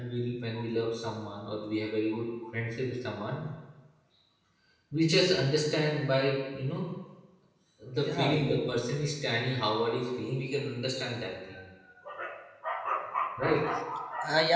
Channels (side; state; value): both; identical; correlation 1.00